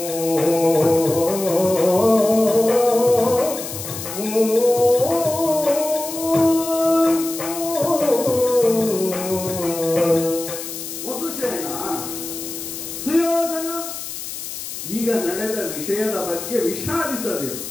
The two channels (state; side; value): noise; left; hiss, 8 dB below the sound